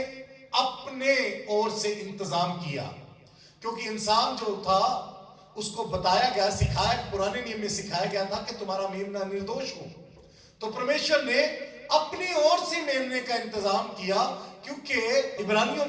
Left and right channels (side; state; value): both; identical; correlation 1.00